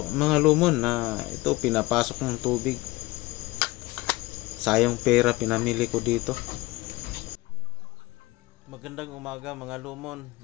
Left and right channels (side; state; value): right; quieter; 20.2 dB